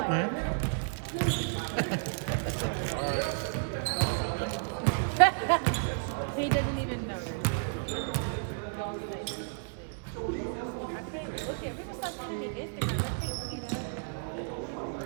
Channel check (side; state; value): left; silent; digital silence